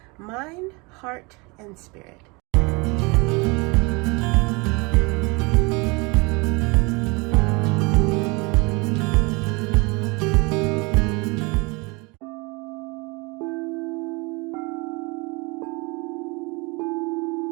mind, heart, and spirit.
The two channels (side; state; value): left; quieter; 27.7 dB